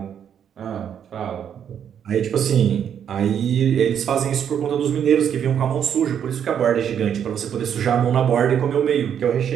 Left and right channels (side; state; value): left; quieter; 8.7 dB